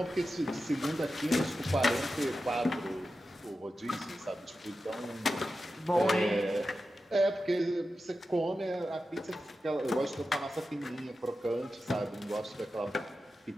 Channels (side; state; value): both; normal; correlation 0.91